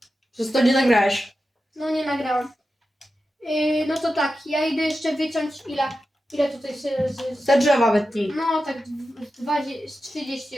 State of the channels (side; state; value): both; normal; correlation 0.91